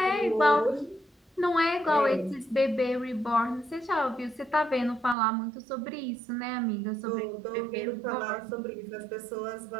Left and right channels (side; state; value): left; drops out; at 5.2 s